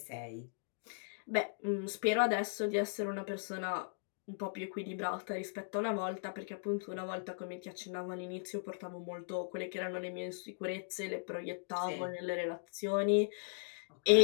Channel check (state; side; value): silent; right; digital silence